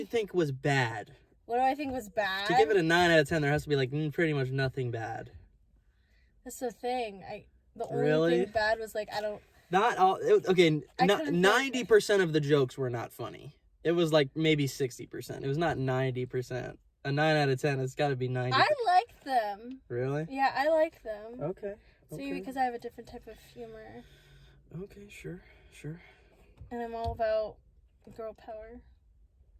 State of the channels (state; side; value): identical; both; correlation 1.00